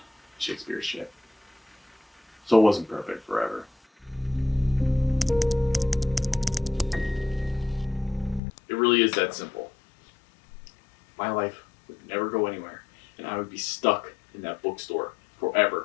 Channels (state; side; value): drops out; right; at 8.4 s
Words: Shakespeare's shit. So it wasn't perfect forever. It really is that simple. My life would never go anywhere, and I would be stuck in that bookstore